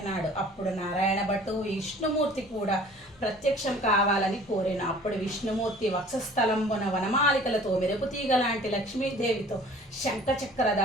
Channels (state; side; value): normal; both; correlation 0.49